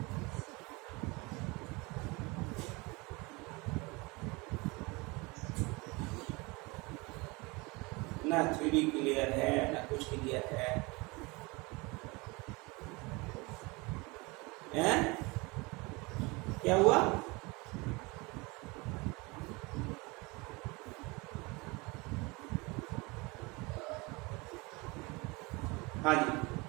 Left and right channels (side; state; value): left; quieter; 25.6 dB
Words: ना 3D क्लियर है ना कुछ क्लियर है, हैं? क्या हुआ, हाँ जी